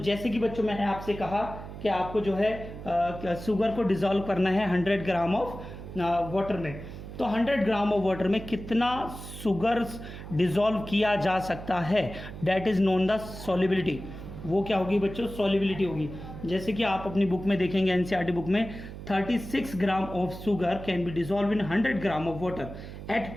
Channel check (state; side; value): noise; right; hum, 11 dB below the sound